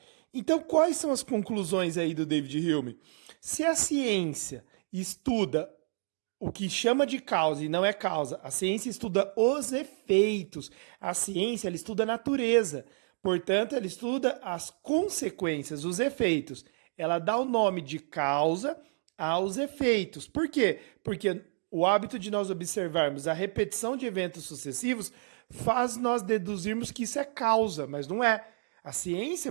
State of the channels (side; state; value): left; silent; 58 dB below the other